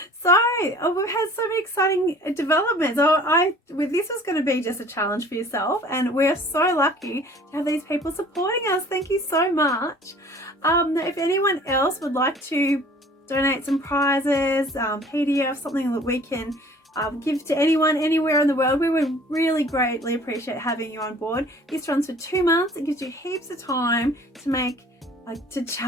So we've had so many exciting developments. This was going to be just a challenge for yourself, and we're so lucky to have these people supporting us. Thank you so much. If anyone else would like to donate some prizes, PDF, something that we can give to anyone anywhere in the world, we would really greatly appreciate having you on board. This runs for 2 months. It gives you heaps of time to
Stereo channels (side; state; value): both; normal; correlation 0.49